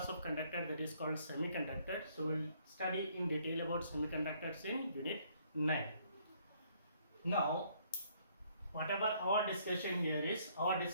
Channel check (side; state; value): both; inverted; correlation -0.65